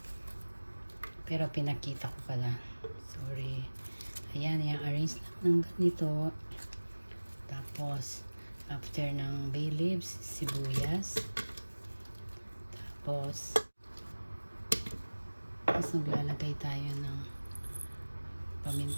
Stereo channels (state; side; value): inverted; both; correlation -1.00